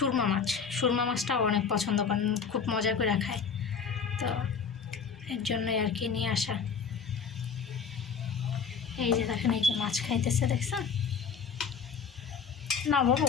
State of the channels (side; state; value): right; quieter; 6.1 dB